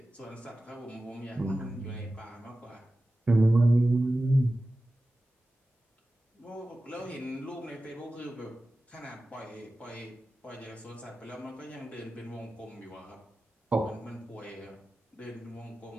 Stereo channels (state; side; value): normal; both; correlation 0.95